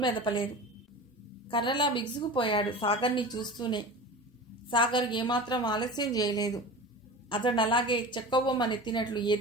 మెదపలేదు. కర్రలా బిగుసుకుపోయాడు సాగర్ని చూస్తూనే. సాగర్ ఏమాత్రం ఆలస్యం చేయలేదు. అతడు అలాగే చెక్కబొమ్మనెత్తినట్లు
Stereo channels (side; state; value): both; normal; correlation 0.33